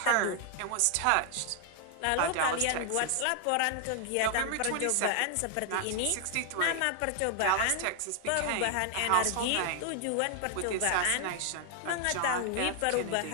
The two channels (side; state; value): both; different; correlation 0.00